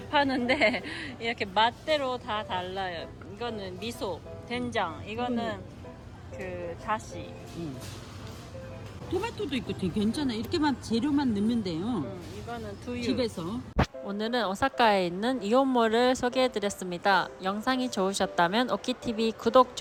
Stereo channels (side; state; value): both; identical; correlation 1.00